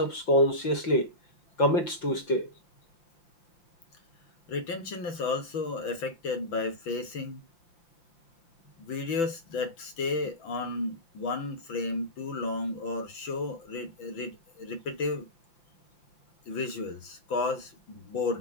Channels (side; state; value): right; late; 6.0 ms